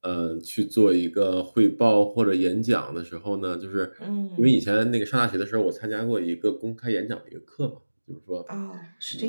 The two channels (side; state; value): both; inverted; correlation -1.00